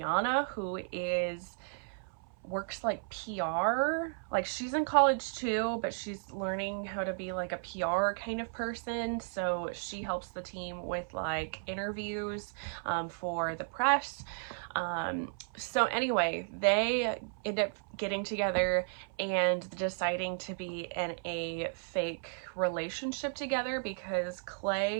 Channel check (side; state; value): left; silent; 55 dB below the other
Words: who works like PR. Like she's in college too, but she's learning how to be like a PR kind of person. So she helps the team with like interviews for the press. So anyway, they end up getting together and deciding to be in a fake relationship together because